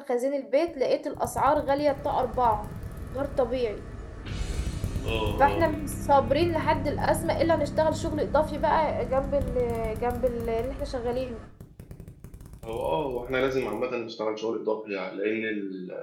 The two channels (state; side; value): identical; both; correlation 1.00